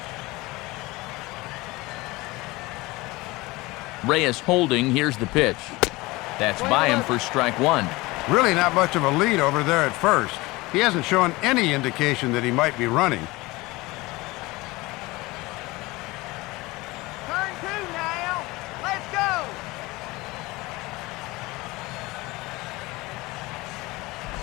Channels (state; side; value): quieter; right; 21.6 dB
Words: Reyes holding. Here's the pitch. That's by him for strike 1. Really not much of a lead over there at first. He hasn't shown any indication that he might be running. Turn 2 now. Let's go.